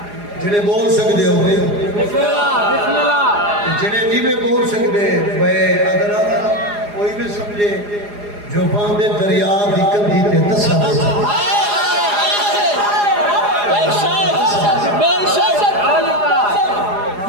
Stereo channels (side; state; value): left; late; 4.8 ms